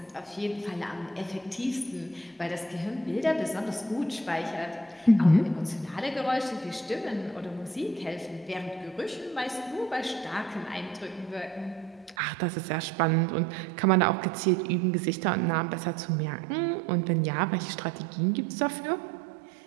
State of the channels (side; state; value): left; drops out; at 12.2 s